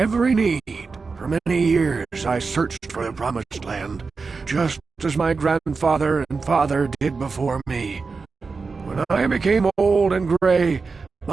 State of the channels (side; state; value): left; quieter; 4.5 dB